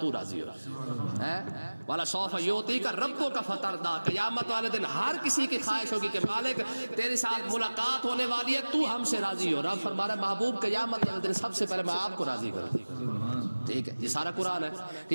راضی ہو جائے۔ والا سوف یعطیک ربک فترضی، قیامت والے دن ہر کسی کی خواہش ہوگی کہ مالک تیرے ساتھ ملاقات ہونے والی ہے، تو ہم سے راضی ہو۔ رب فرما رہا ہے محبوب قیامت والے دن سب سے پہلے میں آپ کو راضی کروں۔ ٹھیک ہے، یہ سارا قرآن ہے۔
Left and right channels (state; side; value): inverted; both; correlation -1.00